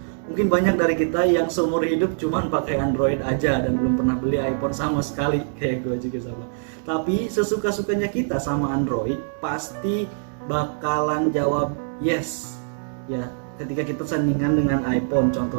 Mungkin banyak dari kita yang seumur hidup cuman pakai Android aja dan belum pernah beli iPhone sama sekali, kayak gue juga sama. Tapi sesuka-sukanya kita sama Android pasti bakalan jawab yes. Ya, ketika kita sandingan dengan iPhone,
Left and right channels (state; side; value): silent; left; 63 dB below the other